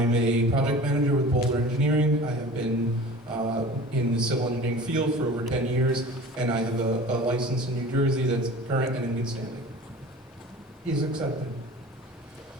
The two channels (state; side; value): normal; both; correlation 0.40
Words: a project manager with Boulder Engineering. I have been in the civil engineering field for over 10 years, and I have a license in New Jersey that's current and in good standing. He's accepted.